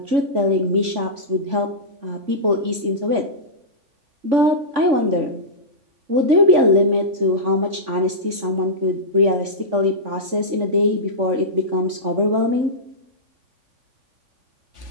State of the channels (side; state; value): left; late; 3.5 ms